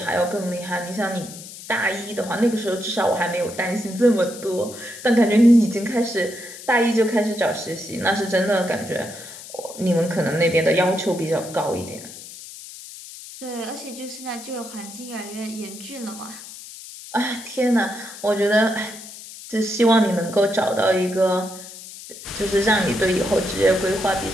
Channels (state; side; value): noise; left; hiss, 14 dB below the sound